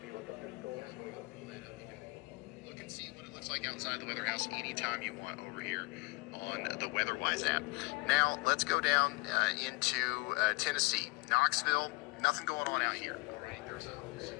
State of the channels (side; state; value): right; quieter; 26.5 dB